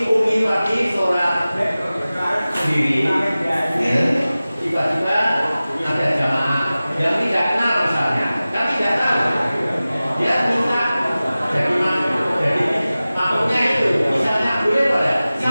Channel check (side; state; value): both; inverted; correlation -0.97